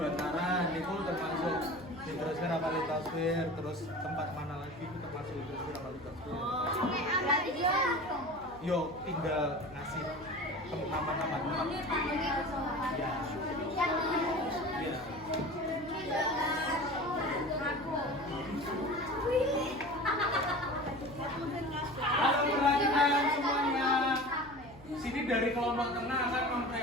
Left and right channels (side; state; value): right; noise; hum, 20 dB below the sound